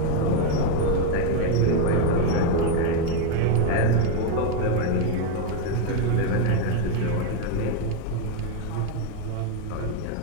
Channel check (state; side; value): different; both; correlation 0.01